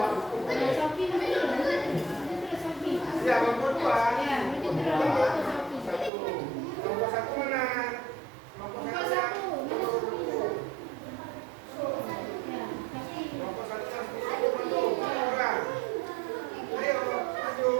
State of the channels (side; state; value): left; drops out; at 6.1 s